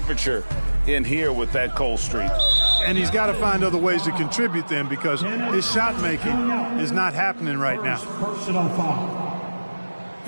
in here with that cold streak. And he's got to find other ways to contribute then, because his shot making is not happening right now. Personal foul.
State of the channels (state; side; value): inverted; both; correlation -1.00